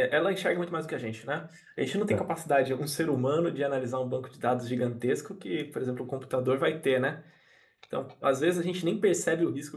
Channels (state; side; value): identical; both; correlation 1.00